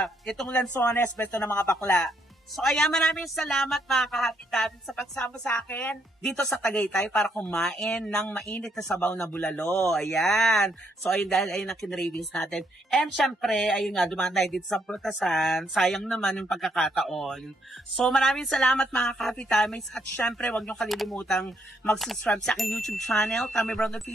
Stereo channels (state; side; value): normal; both; correlation 0.73